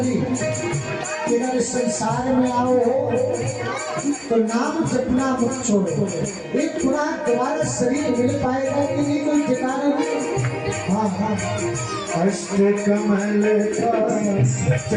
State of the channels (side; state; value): both; identical; correlation 1.00